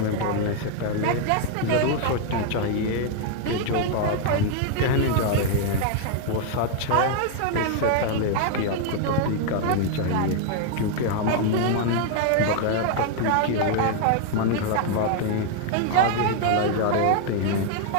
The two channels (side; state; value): both; different; correlation 0.00